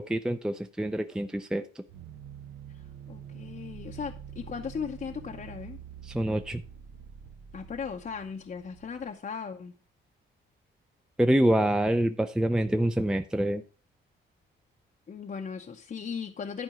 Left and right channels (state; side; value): normal; both; correlation 0.89